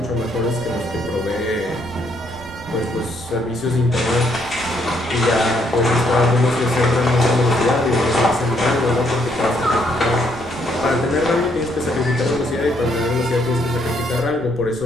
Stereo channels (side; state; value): right; noise; rumble, 16 dB below the sound